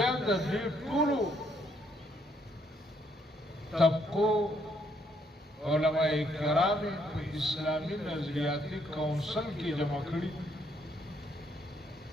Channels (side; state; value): both; normal; correlation 0.71